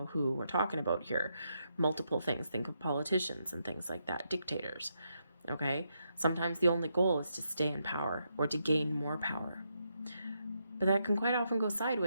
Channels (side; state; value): both; inverted; correlation -0.80